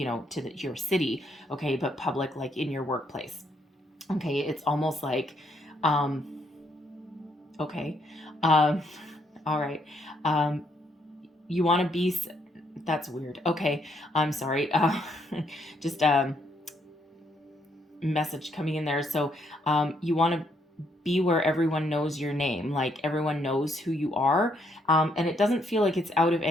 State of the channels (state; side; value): normal; both; correlation 0.73